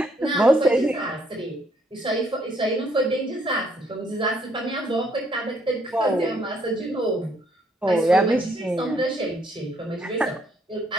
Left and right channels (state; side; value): normal; both; correlation 0.69